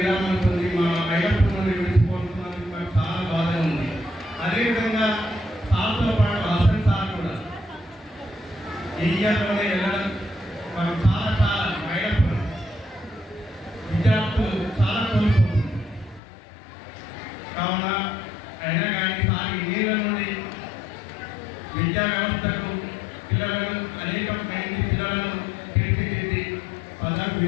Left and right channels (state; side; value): drops out; right; at 16.2 s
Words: పొంది మా ఐలప్పన్ నుండి విడిచిపోతున్నందుకు మాకు చాలా బాధ ఉంది. అదేవిధంగా సార్తో పాటు హసన్ సార్ కూడా ఇయర్లోనే వెళ్ళడం మనం చాలా మైనప్పుడు విద్యార్థులు చాలా కోల్పోతుంది. కావున అయినా కానీ సార్ నీళ్ళ నుండి విద్యా వ్యవస్థకు పిల్లలను అనేక మంది పిల్లలను తీర్చిదిద్ది పదవి